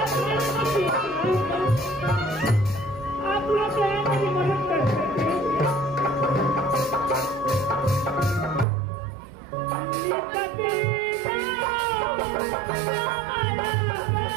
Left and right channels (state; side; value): drops out; left; at 8.7 s